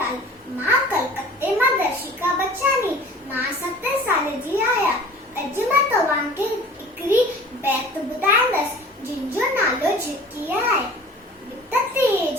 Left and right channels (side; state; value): both; normal; correlation 0.44